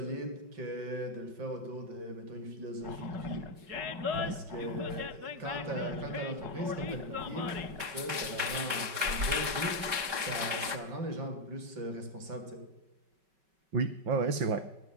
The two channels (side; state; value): left; late; 5.3 ms